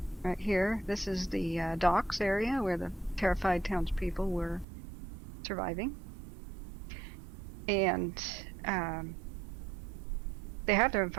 Right here, this is the docks area where the terrified townspeople were surviving. And they have their own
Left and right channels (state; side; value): drops out; left; at 4.7 s